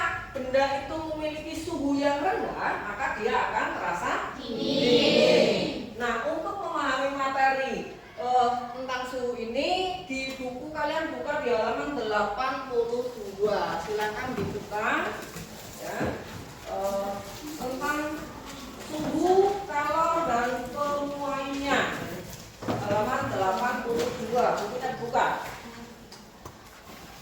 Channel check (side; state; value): both; identical; correlation 1.00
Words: benda itu memiliki suhu yang rendah, maka dia akan terasa dingin. Nah, untuk memahami materi tentang suhu ini di buku kalian buka di halaman 82. Silakan dibuka ya. Tentang suhu, kalor, dan penuaiannya, halaman 82. Bukunya dibuka.